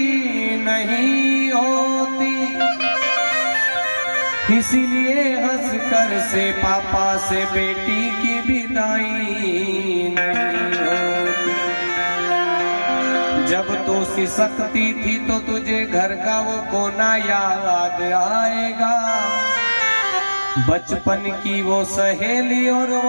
नहीं होती, इसीलिए हंसकर से पापा से बेटी की विदाई नहीं होती। जब तो सिसकती थी तो तुझे घर का वो कोना याद आएगा। बचपन की वो सहेली और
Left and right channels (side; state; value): both; inverted; correlation -1.00